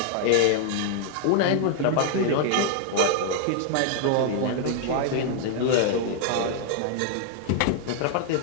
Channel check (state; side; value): different; both; correlation 0.00